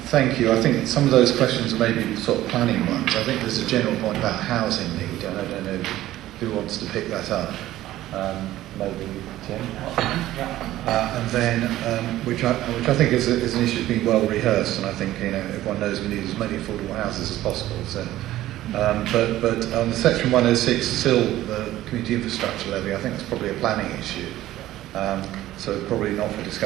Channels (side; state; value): left; quieter; 14.7 dB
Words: Thank you. I think some of those questions are maybe sort of planning ones. I think there's a general point about housing need, and I don't know who wants to pick that up. Maybe Tim. And then, which I think is an issue that's been well rehearsed, and I think everyone knows we need as many affordable houses as possible. So, but on Section 106, still the community infrastructure levy, I think it's probably a planning issue. So probably not for